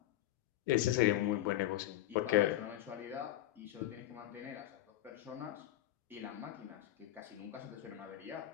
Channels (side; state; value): right; quieter; 14.2 dB